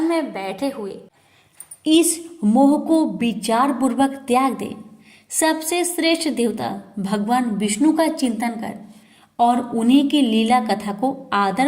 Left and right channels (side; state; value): both; identical; correlation 1.00